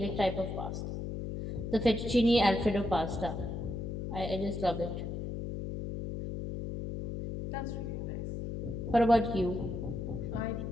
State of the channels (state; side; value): noise; left; hum, 4 dB below the sound